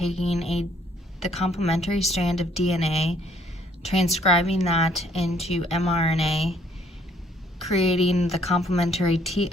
the complementary strand of DNA, transcribing that into mRNA, creating the complementary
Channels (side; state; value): both; normal; correlation 0.64